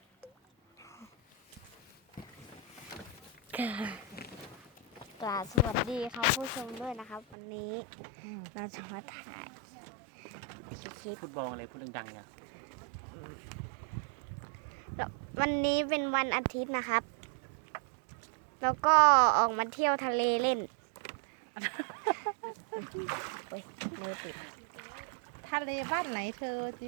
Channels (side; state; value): left; drops out; at 7.4 s